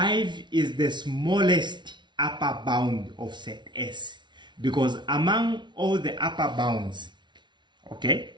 is the smallest upper bound of set S, because among all the upper bounds, okay,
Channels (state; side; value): late; left; 0.22 ms